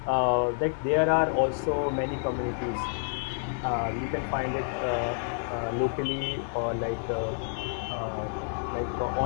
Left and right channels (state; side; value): silent; right; digital silence